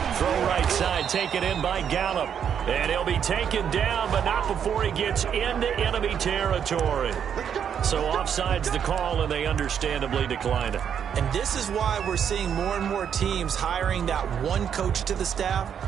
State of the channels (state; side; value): quieter; left; 8.2 dB